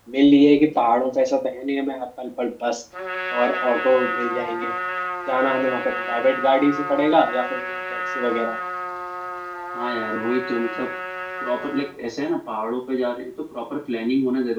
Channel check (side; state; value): both; identical; correlation 1.00